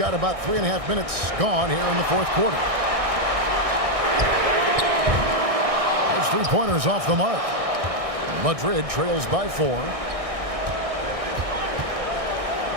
about 3.5 minutes gone here in the fourth quarter. Those 3-pointers off the mark. Madrid trails by 4.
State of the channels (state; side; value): late; left; 1.6 ms